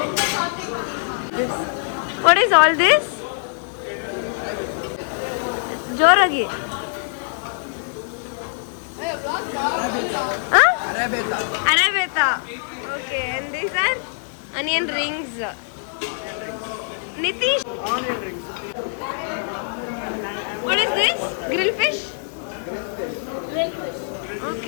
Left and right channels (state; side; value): silent; right; digital silence